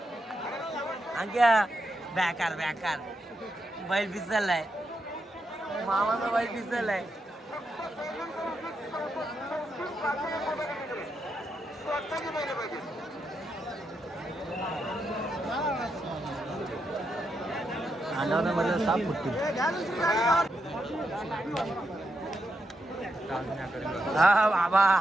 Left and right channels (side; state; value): both; normal; correlation 0.83